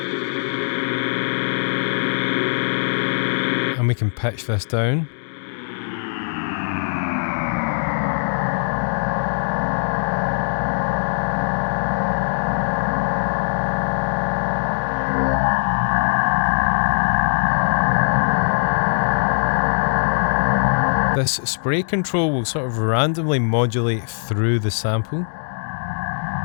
And we can pitch this down. This spray control will sort of randomly modulate through the sample.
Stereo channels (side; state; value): right; silent; digital silence